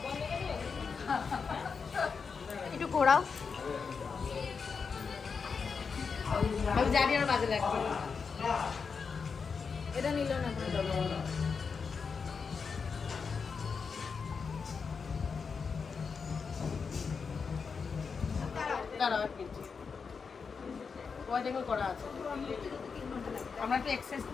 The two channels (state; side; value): quieter; right; 5.5 dB